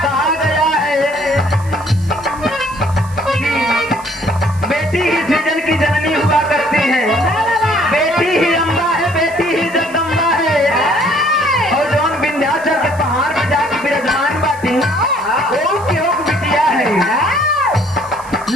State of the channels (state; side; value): noise; right; hiss, 22 dB below the sound